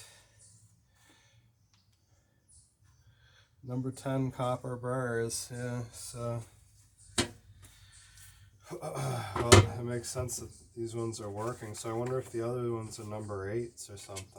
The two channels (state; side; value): identical; both; correlation 1.00